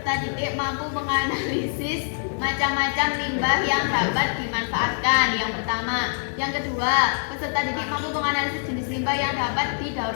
didik mampu menganalisis macam-macam limbah yang dapat dimanfaatkan. Yang pertama. Yang kedua, peserta didik mampu menganalisis jenis limbah yang dapat didaur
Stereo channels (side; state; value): right; silent; 60 dB below the other